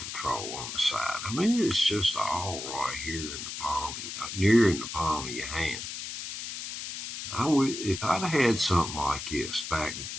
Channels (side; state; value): left; noise; hiss, 7 dB below the sound